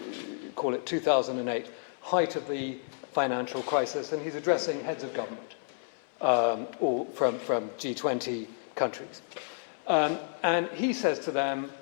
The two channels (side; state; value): right; silent; 57 dB below the other